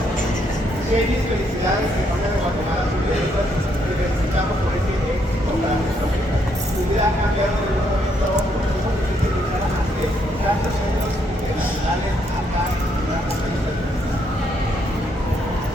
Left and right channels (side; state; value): both; normal; correlation 0.73